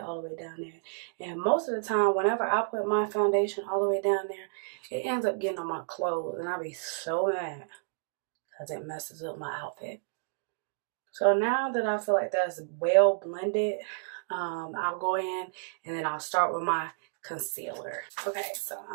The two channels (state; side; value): silent; left; digital silence